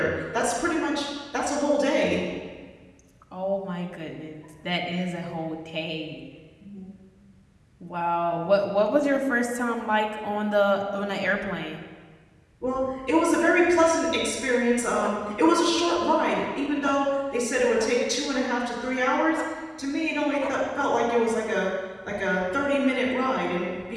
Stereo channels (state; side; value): identical; both; correlation 1.00